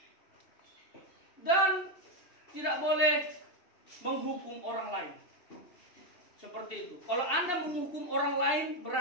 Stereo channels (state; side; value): late; right; 2.7 ms